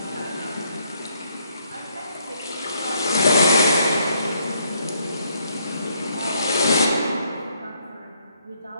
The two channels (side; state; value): both; inverted; correlation -0.70